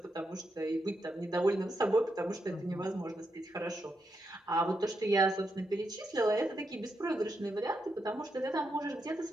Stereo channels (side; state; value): both; normal; correlation 0.83